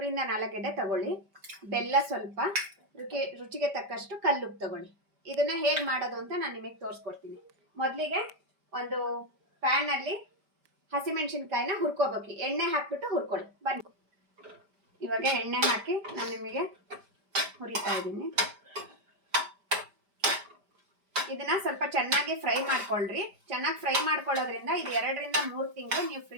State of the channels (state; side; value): late; left; 5.1 ms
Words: ರಿಂದ 4 ಗೆಡ್ಡೆ ತಗೊಳ್ಳಿ, ಬೆಲ್ಲ ಸ್ವಲ್ಪ, ರುಚಿಗೆ ತಕ್ಕಷ್ಟು ಕಲ್ಲುಪ್ಪು ತಗೊಳ್ಳಿ. ಇದನ್ನ ಹೇಗೆ ಮಾಡೋದು ಅಂತ ನಾನು ನಿಮಗೆ ತೋರಿಸ್ಕೊಡ್ತೀನಿ. ಮೊದಲಿಗೆ ಒಂದು ಪ್ಯಾನ್ ಅಲ್ಲಿ ಹಸಿಮೆಣಸಿನಕಾಯಿನ ಹುರ್ಕೋಬೇಕು. ಎಣ್ಣೆ ಹಾಕ್ಬಿಟ್ಟು ಹುರ್ಕೊಳ್ಳಿ ಬನ್ನಿ. ಇವಾಗ ಎಣ್ಣೆ ಹಾಕಿ ನಾನು ನಿಮಗೆ ಹುರಿತಾ ಇದ್ದೀನಿ. ಇದನ್ನ ಸ್ವಲ್ಪ ಚೆನ್ನಾಗಿ ಫ್ರೈ ಮಾಡ್ಕೊಳ್ರಿ. ಚೆನ್ನಾಗಿ ಫ್ರೈ ಮಾಡ್ಕೊಳ್ಳೋದ್ರಿಂದ ಇದು 2 ರಿಂದ 3 ತಿಂಗಳು ನೀವು